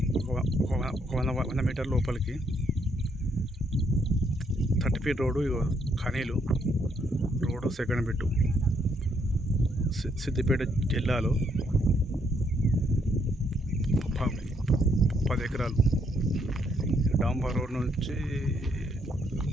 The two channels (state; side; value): normal; both; correlation 0.73